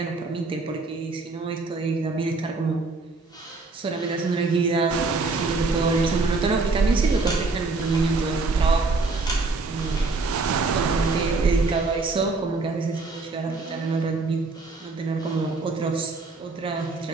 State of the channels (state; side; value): quieter; left; 3.7 dB